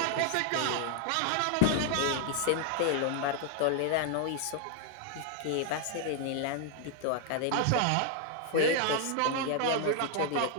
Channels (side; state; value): both; different; correlation 0.00